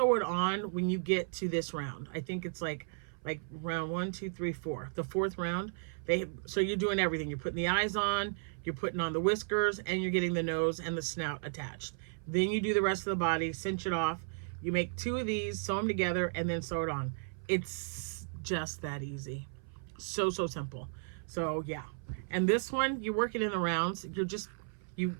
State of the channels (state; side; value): silent; left; 55 dB below the other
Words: it on when you get to this round. I think it's like round 1, 2, 3, 4. The 4th round, so you're doing everything. You're putting the eyes on, you're putting on the whiskers, and you're getting the nose and the snout attached. Then you do the rest of the body, cinch it off. You make 2 of these, sew them together, and then sew it on. It's just that easy. So simple. So yeah. And this one, you work it in the rounds.